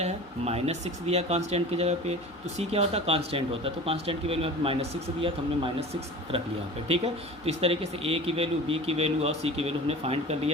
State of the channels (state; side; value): normal; both; correlation 0.37